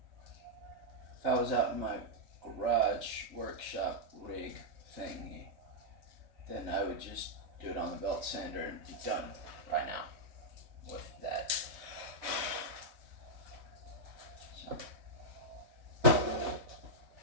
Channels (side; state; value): left; late; 3.1 ms